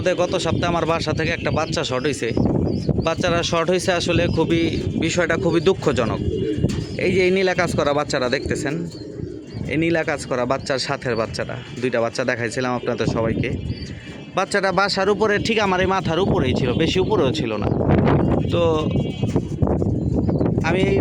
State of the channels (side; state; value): both; identical; correlation 1.00